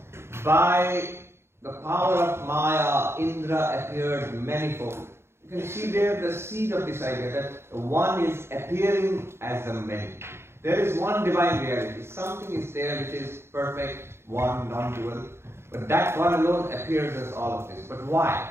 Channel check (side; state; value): left; late; 0.12 ms